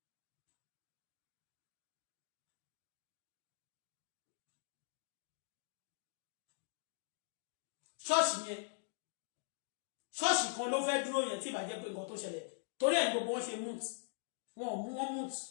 Trust me. Trust kan ló fẹ́ dúró yẹn tí bá jẹ́ pé nǹkan tó ṣẹlẹ̀. Torí ẹ̀ gbogbo wọn ṣe moot. Wọ́n moot.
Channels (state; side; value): silent; right; digital silence